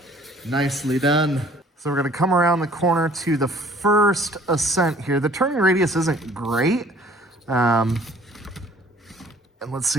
Nicely done. So we're going to come around the corner to the first ascent here. The turning radius isn't great. And let's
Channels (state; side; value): normal; both; correlation 0.54